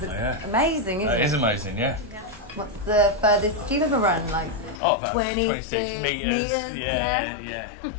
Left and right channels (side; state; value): right; drops out; at 4.8 s